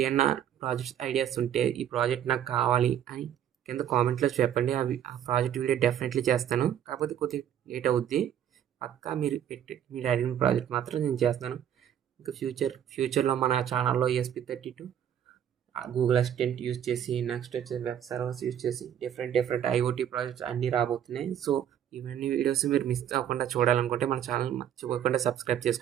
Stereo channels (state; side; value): quieter; left; 9.9 dB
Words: ఏమన్నా ప్రాజెక్ట్స్ ఐడియాస్ ఉంటే ఈ ప్రాజెక్ట్ నాకు కావాలి అని కింద కామెంట్లో చెప్పండి. ఆ ప్రాజెక్ట్ వీడియో డెఫినెట్లీ చేస్తాను. కాకపోతే కొద్దిగా లేట్ అవుద్ది. పక్కా మీరు అడిగిన ప్రాజెక్ట్ మాత్రం నేను చేస్తాను. ఇంకా ఫ్యూచర్లో మన ఛానల్లో ESP32 గూగుల్ అసిస్టెంట్ యూజ్ చేసి, నెక్స్ట్ వచ్చేసి వెబ్ సర్వర్స్ యూజ్ చేసి డిఫరెంట్ IoT ప్రాజెక్ట్స్ అన్నీ రాబోతున్నాయి. సో ఇవన్నీ వీడియోస్ మీరు మిస్ అవ్వకుండా చూడాలనుకుంటే మన ఛానల్ మర్చిపోకుండా సబ్స్క్రైబ్